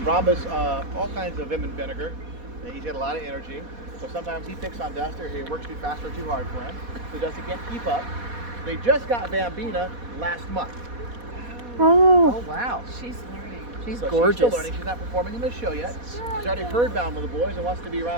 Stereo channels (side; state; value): left; late; 4.1 ms